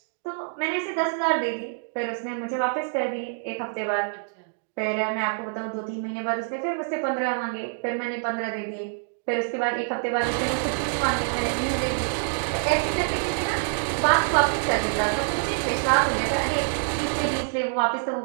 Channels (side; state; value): left; silent; digital silence